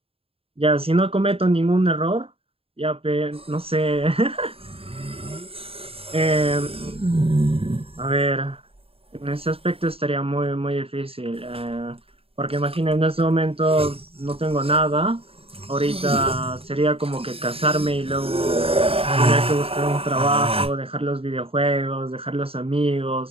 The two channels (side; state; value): left; late; 0.27 ms